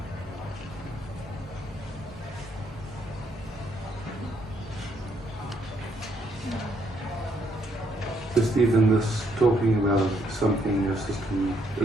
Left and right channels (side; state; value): both; normal; correlation 0.72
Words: Just even this talking about something your system